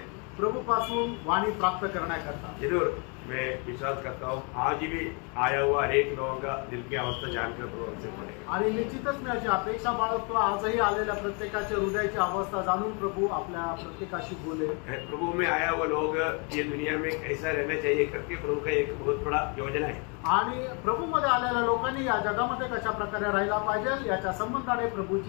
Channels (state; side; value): quieter; right; 34.7 dB